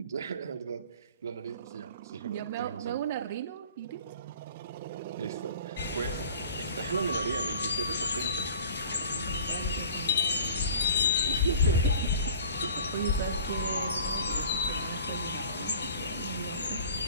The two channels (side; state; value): both; inverted; correlation -0.45